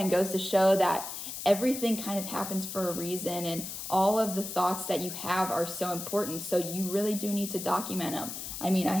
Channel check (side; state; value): left; noise; hiss, 7 dB below the sound